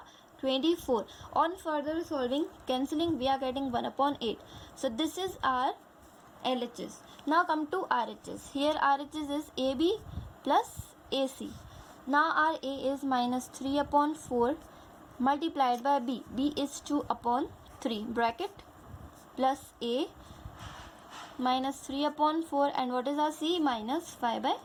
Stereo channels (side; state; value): both; identical; correlation 1.00